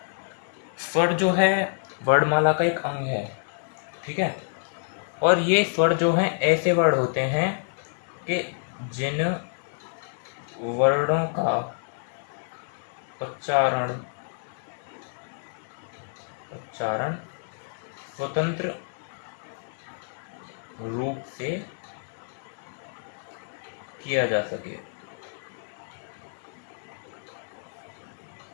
स्वर जो है वर्णमाला का एक अंग है। ठीक है, और ये स्वर जो हैं ऐसे वर्ड होते हैं कि जिन वर्णों का उच्चारण स्वतंत्र रूप से किया जा सके।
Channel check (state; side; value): silent; right; 59 dB below the other